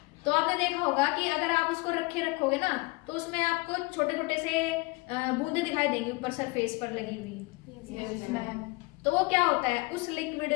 तो आपने देखा होगा कि अगर आप उसको रखोगे ना, तो उसमें आपको छोटे छोटे से बूंदे दिखाई देंगी ऊपर सरफेस पर लगी हुई। तो वो क्या होता है, उस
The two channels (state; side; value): quieter; right; 25.1 dB